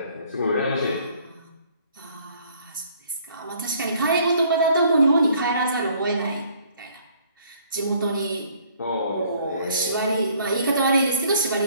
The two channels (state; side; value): inverted; both; correlation -0.60